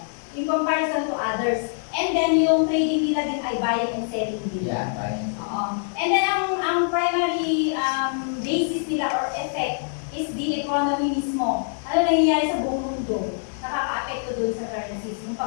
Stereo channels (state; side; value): silent; right; 62 dB below the other